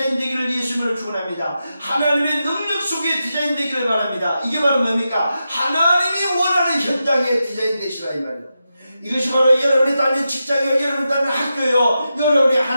예수님으로 축원합니다. 하나님의 능력 속에 디자인되기를 바랍니다. 이게 바로 뭡니까? 하나님이 원하는 현장에 디자인되시라 이 말이에요. 이것이 바로 여러분이 다니는 직장이요, 여러분이 다니는 학교요, 여러분이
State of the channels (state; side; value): inverted; both; correlation -0.89